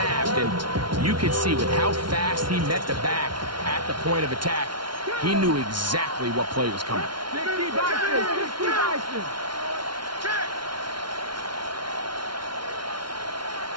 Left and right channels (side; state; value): left; late; 0.72 ms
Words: And you can see with how fast he met the back at the point of attack, he knew exactly what play was coming. 60 Bison. 60 Bison. Check.